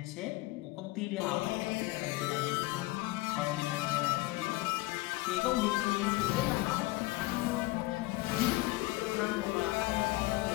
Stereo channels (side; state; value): right; quieter; 20.5 dB